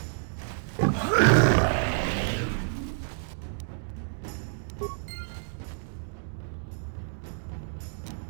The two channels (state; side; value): silent; left; digital silence